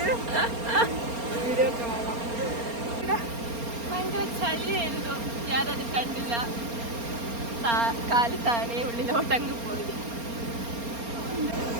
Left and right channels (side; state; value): left; late; 4.3 ms